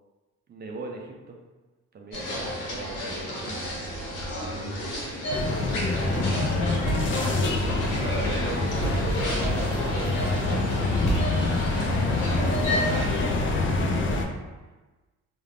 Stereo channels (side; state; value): both; normal; correlation 0.47